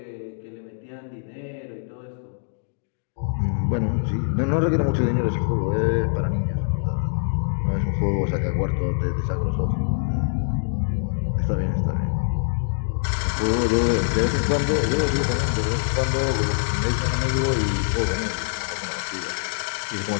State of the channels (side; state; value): right; silent; digital silence